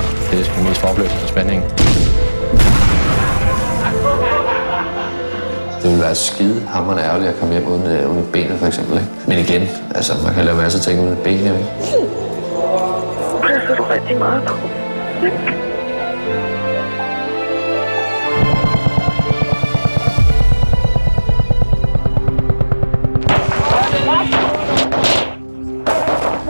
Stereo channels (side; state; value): both; inverted; correlation -1.00